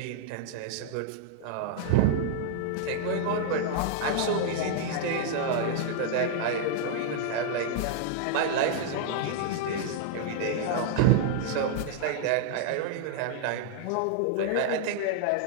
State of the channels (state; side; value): different; both; correlation -0.01